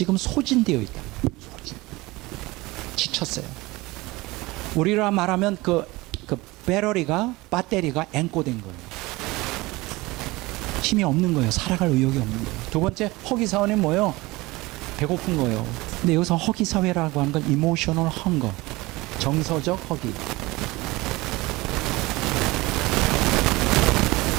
소진되어 있다. 지쳤어요. 우리라 말하면 그 배터리가 앵꼬된 거예요. 힘이 없는 거예요. 살아갈 의욕이 없는 거예요. 두 번째 허기사원은 뭐예요? 배고픈 거예요. 근데 여기서 허기 사회라고 하는 건 이모셔널 헝거, 정서적 허기.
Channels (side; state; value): left; quieter; 21.4 dB